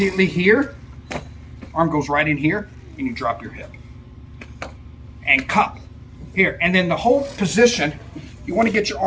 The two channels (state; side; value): identical; both; correlation 1.00